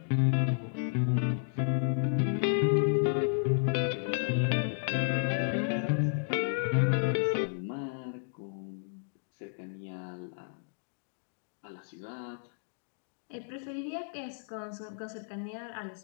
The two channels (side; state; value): right; silent; digital silence